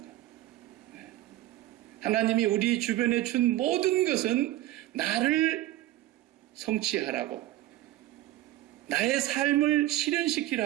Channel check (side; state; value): left; quieter; 15.3 dB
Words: 하나님이 우리 주변에 준 모든 것은 나를 성취하라고, 나의 삶을